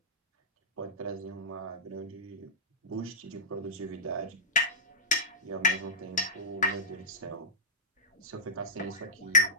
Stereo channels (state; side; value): normal; both; correlation -0.17